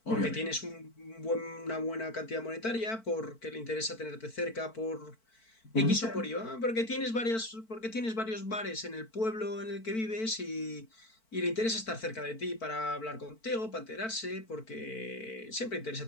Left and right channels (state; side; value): late; right; 4.5 ms